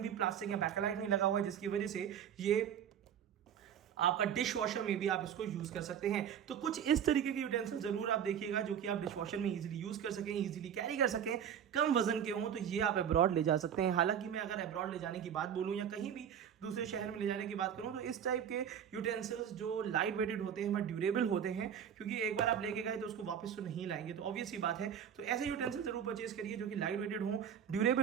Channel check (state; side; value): quieter; left; 8.7 dB